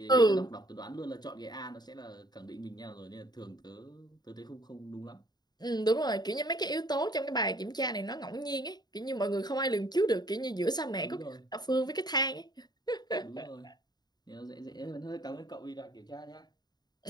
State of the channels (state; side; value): late; right; 0.20 ms